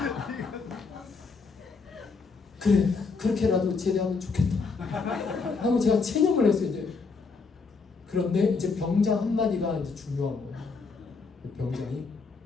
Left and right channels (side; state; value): right; quieter; 4.6 dB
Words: 그래 그렇게라도 제대하면 좋겠다 하고 제가 체념을 했어요. 이제 그런데 이제 병장 한마디가 이제 중요한 거예요. 병장이